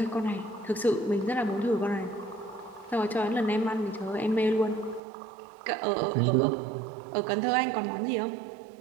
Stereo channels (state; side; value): drops out; left; at 5.0 s